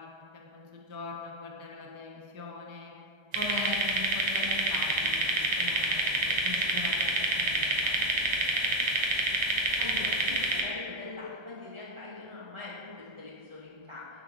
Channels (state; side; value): late; left; 1.3 ms